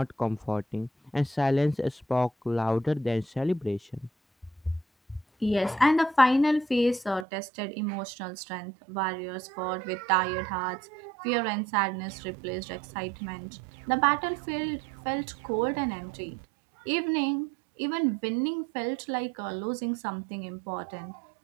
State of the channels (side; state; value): left; drops out; at 7.2 s